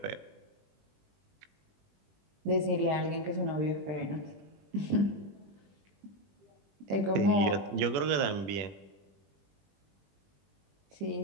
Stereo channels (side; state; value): left; late; 20 ms